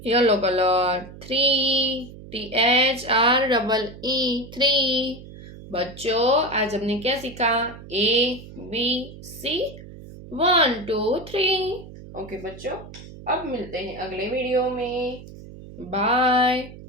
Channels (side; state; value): right; noise; hum, 16 dB below the sound